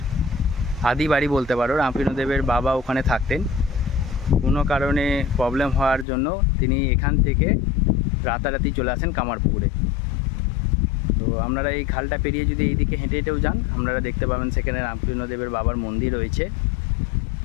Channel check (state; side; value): drops out; right; at 6.1 s